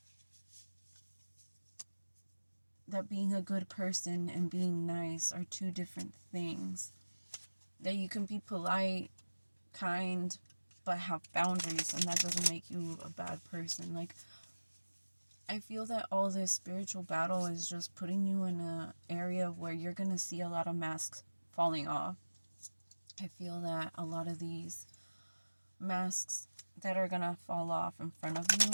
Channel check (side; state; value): both; inverted; correlation -1.00